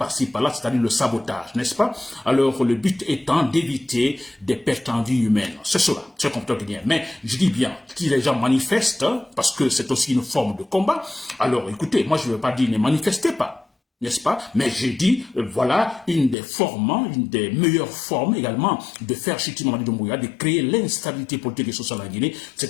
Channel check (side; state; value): right; drops out; at 16.4 s